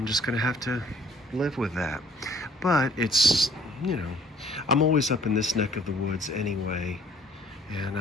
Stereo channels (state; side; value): normal; both; correlation 0.57